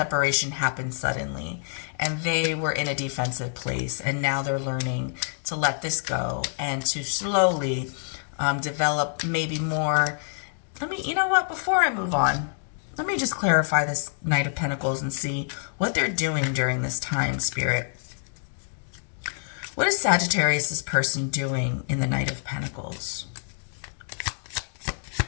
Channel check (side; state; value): right; silent; digital silence